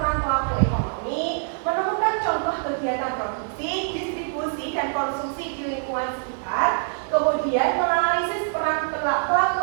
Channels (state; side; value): silent; left; digital silence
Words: pelaku ekonomi, menemukan contoh kegiatan produksi, distribusi, dan konsumsi di lingkungan sekitar, kemudian menganalisis peran pelaku